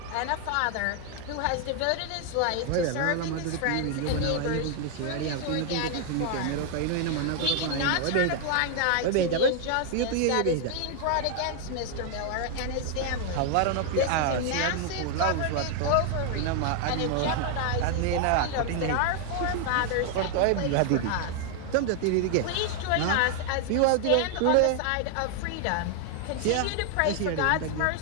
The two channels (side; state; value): both; different; correlation 0.00